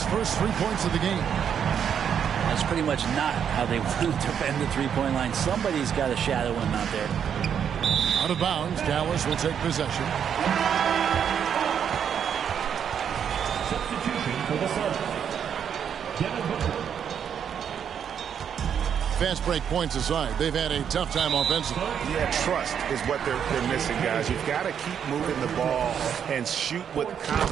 first 3 points of the game. That's pretty much not how they want to defend the three-point line. Somebody's got to shadow him out there. Out of bounds, Dallas will take possession. Substitution for the Suns. Devin Booker. Fast break points aside, they've had a tough time offensively. Yeah, trust is what they're missing, guys. You've got to keep moving the ball and shoot with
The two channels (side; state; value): left; quieter; 8.2 dB